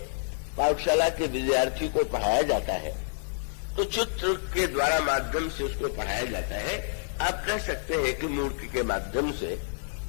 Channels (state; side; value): silent; right; digital silence